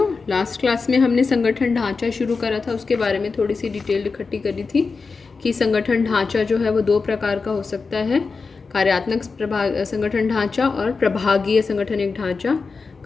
Last class में हमने संगठन ढांचा शुरू करा था, उसके बारे में थोड़ी सी डिटेल इकट्ठी करी थी कि संगठन ढांचा जो है वो दो प्रकार का हो सकता है, कार्यात्मक संगठन ढांचा और प्रभागीय संगठनिक ढांचा।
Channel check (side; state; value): right; quieter; 4.6 dB